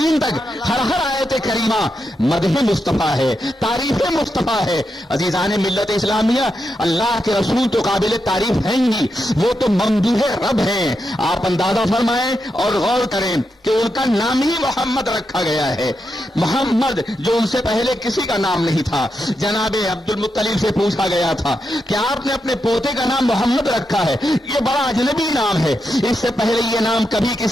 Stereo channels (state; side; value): normal; both; correlation 0.85